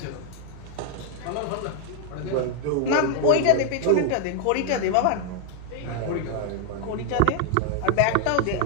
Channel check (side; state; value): both; different; correlation 0.00